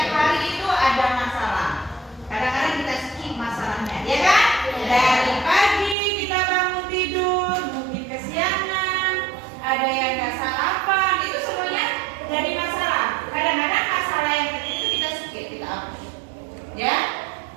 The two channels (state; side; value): drops out; left; at 6.0 s